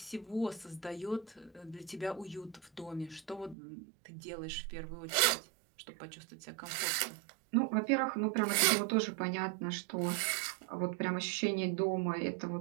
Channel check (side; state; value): left; drops out; at 3.6 s